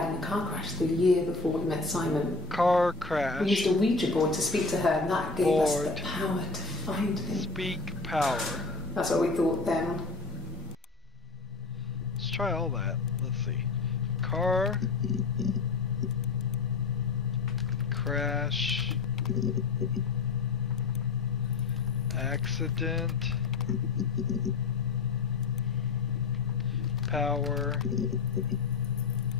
in a car crash the year before we met Simon. Car crash. We used a Ouija board to speak to her, and that gave us the power to find him. Speak power. That's what we thought then. Let's try all that. Let's see. Car crash. Accident. Power.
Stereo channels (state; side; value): quieter; right; 4.1 dB